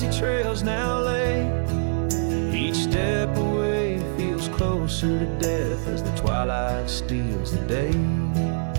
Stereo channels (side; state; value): left; silent; 62 dB below the other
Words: trails now lay. Each step away feels closer to death as the twilight steals the day.